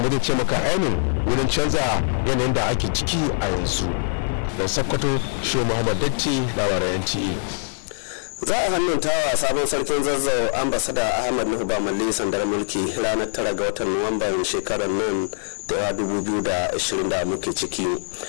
zai ce maka ainihin wurin canza yanayin da ake ciki a yanzu. Da Sokoto, Shehu Muhammad Datti, labaran NTA. Za a hannuntawa sabon sarkin Zazzau ambasada Ahmad Nuhu Bamalli sandar mulki ranar 9 ga watan Nuwamban shekarar nan da 2020 da muke ciki.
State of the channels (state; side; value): silent; right; 58 dB below the other